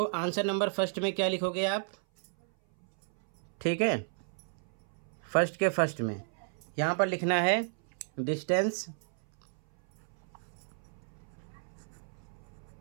आंसर नंबर फर्स्ट में क्या लिखोगे आप, ठीक है, फर्स्ट के फर्स्ट में यहाँ पर लिखना है distance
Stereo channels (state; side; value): silent; left; 56 dB below the other